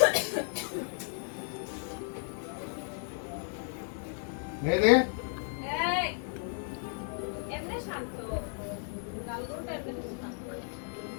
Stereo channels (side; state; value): right; silent; 55 dB below the other